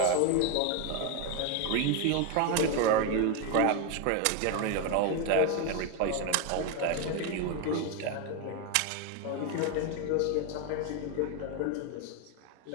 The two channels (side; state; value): both; different; correlation 0.01